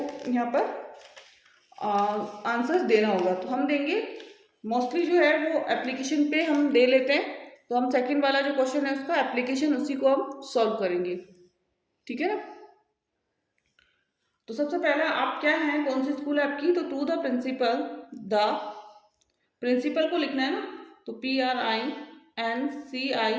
यहाँ पर आंसर्स देना होगा। तो हम देंगे मोस्टली जो है वो एप्लीकेशन पे हम दे लेते हैं, तो हम सेकंड वाला जो क्वेश्चन है उसका एप्लीकेशन उसी को हम सॉल्व करेंगे, ठीक है ना। तो सबसे पहले आप क्या हैं, कौन सी स्कूल है आपकी, तो टू द प्रिंसिपल को लिखना है ना, तो PRINCIPAL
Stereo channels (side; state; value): both; identical; correlation 1.00